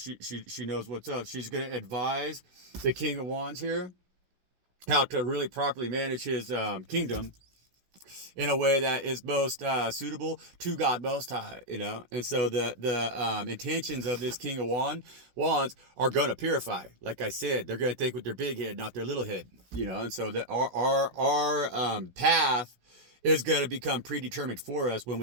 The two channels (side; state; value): left; late; 17 ms